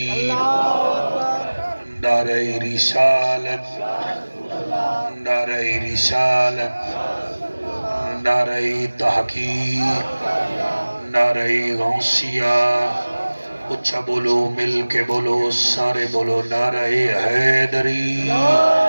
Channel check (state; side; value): inverted; both; correlation -1.00